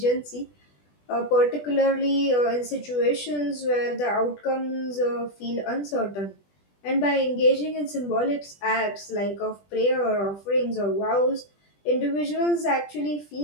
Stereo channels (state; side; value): late; right; 20 ms